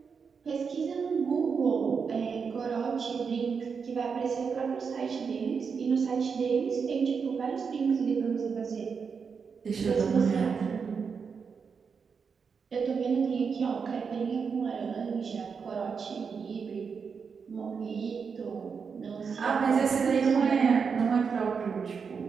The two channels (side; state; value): left; quieter; 5.8 dB